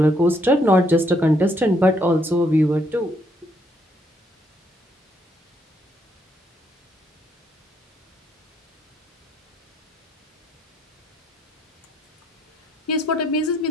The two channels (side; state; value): both; normal; correlation 0.71